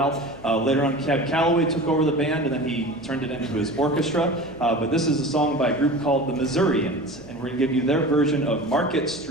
Later on, Cab Calloway took over the band, and then he turned it into his orchestra. But this is a song by a group called the Missourians, and we're going to give you their version of Market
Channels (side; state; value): left; noise; hum, 19 dB below the sound